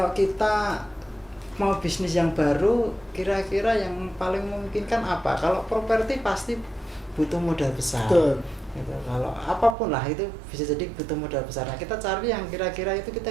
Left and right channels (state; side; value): drops out; left; at 9.8 s